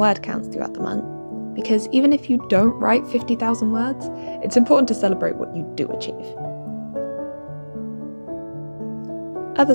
counts throughout the month, because even if you don't write 50,000 words, it's important to celebrate what you do achieve.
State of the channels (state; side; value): inverted; both; correlation -1.00